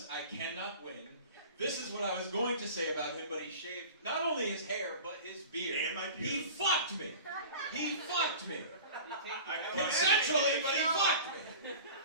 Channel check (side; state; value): both; inverted; correlation -0.39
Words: I cannot win. This is what I was going to say about him, but he shaved not only his hair, but his beard. And my pubes. He fucked me. He fucked me. Consensually, Consensually, but he fucked me.